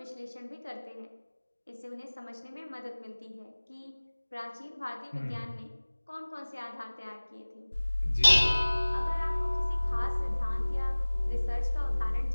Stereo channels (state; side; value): inverted; both; correlation -1.00